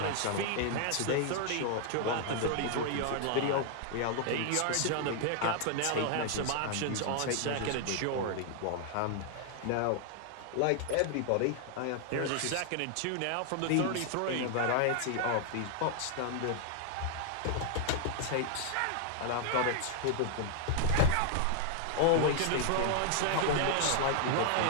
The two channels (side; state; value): both; different; correlation 0.00